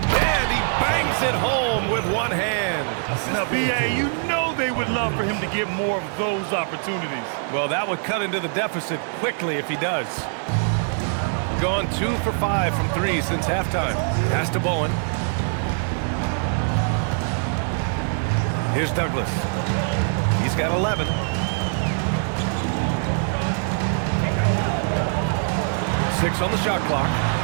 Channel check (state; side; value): silent; left; 60 dB below the other